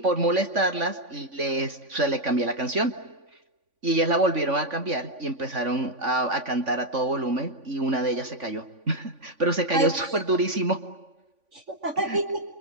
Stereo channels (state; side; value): late; left; 3.5 ms